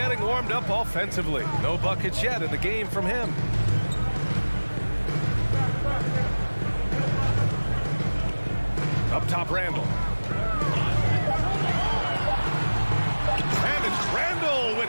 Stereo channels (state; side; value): inverted; both; correlation -1.00